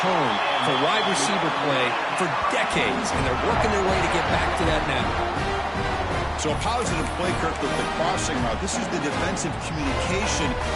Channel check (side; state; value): both; identical; correlation 1.00